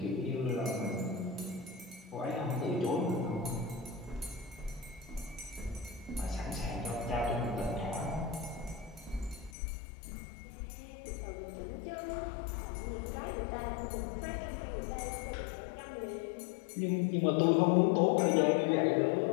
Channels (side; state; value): right; drops out; at 9.5 s